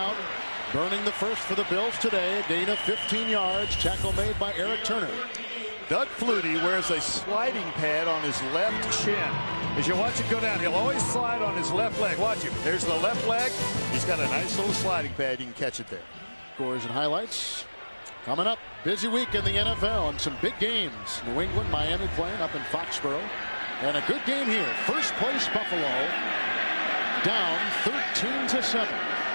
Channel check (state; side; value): inverted; both; correlation -1.00